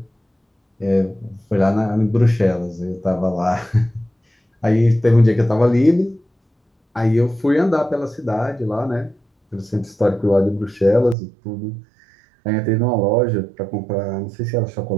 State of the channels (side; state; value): left; drops out; at 11.2 s